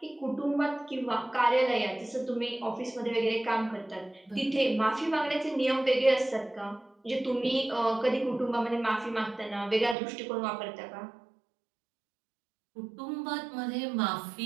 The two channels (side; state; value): left; drops out; at 10.0 s